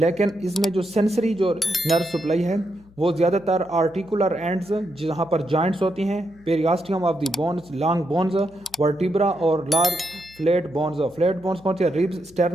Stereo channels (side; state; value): left; noise; hum, 26 dB below the sound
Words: इसमें जो सेंसरी जो नर्व सप्लाई है वो ज़्यादातर आर्टिकुलर एंड्स जहाँ पर जॉइंट्स होती हैं, periosteum of the bones, long bones, vertebra और लार्ज फ्लैट बोन्स कौन सी है? रिब्स,